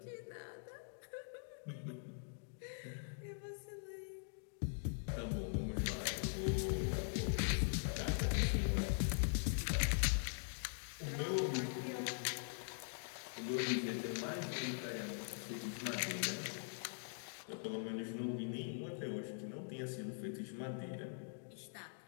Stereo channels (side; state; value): right; silent; digital silence